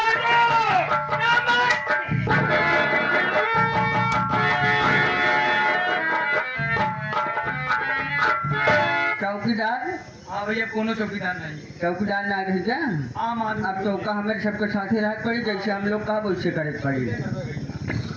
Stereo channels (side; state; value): both; identical; correlation 1.00